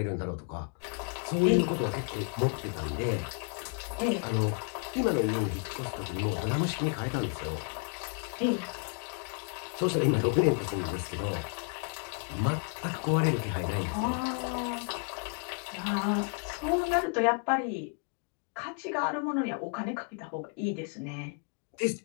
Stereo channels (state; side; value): quieter; right; 39.4 dB